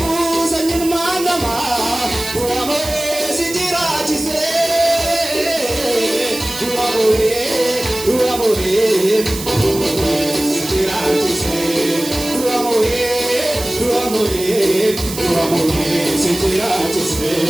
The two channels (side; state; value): right; noise; hiss, 10 dB below the sound